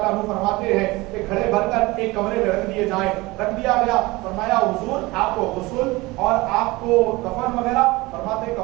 عنہ فرماتے ہیں کہ گھڑے بھر کر ایک کمرے میں رکھ دیے جائیں، رکھ دیا گیا۔ فرمایا حضور آپ کو غسل اور آپ کو کفن وغیرہ، فرماتے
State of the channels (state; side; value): quieter; left; 21.7 dB